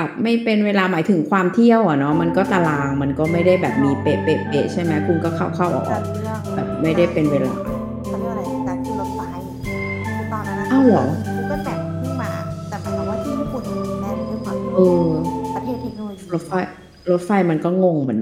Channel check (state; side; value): identical; both; correlation 1.00